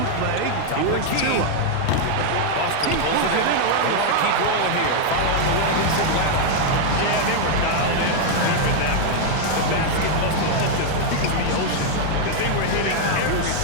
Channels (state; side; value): different; both; correlation 0.00